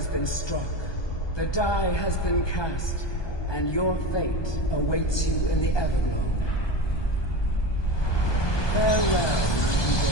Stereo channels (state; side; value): late; right; 1.2 ms